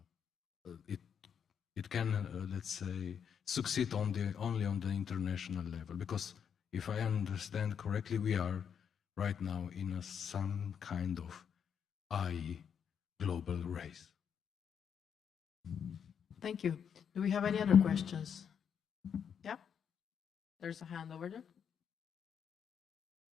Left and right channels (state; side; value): quieter; right; 7.7 dB